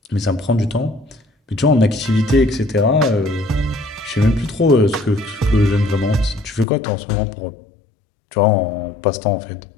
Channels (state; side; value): drops out; right; at 6.7 s